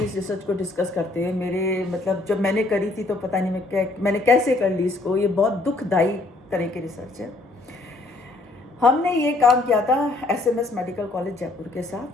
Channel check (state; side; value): quieter; right; 3.0 dB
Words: इस रिसर्च को डिस्कस करते हुए। मेरे जब मैंने करी थी तो पता नहीं मैंने कैसे कर ली इसको, ये बहुत दुखदाई तरह की रिसर्च है। हमने ये काम किया था SMS मेडिकल कॉलेज जयपुर के